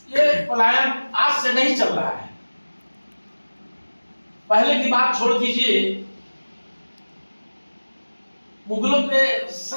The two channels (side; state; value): both; inverted; correlation -1.00